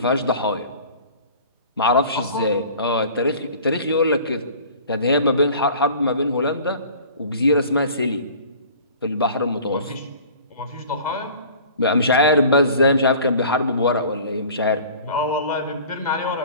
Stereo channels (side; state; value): both; inverted; correlation -0.45